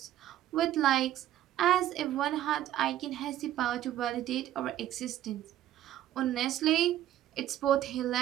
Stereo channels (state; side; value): quieter; left; 12.7 dB